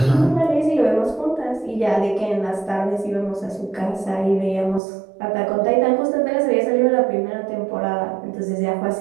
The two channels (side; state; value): left; drops out; at 4.8 s